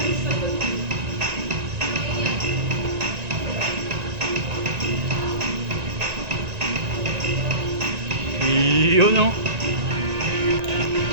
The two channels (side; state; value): left; late; 1.9 ms